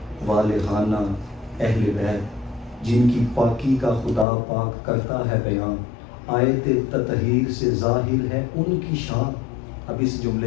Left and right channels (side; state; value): right; drops out; at 4.2 s